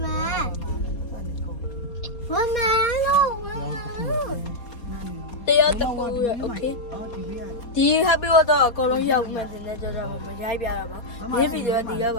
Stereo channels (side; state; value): right; late; 4.3 ms